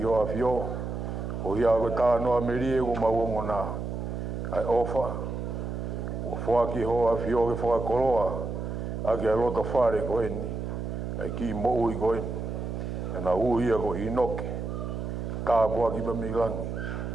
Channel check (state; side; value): noise; right; hum, 4 dB below the sound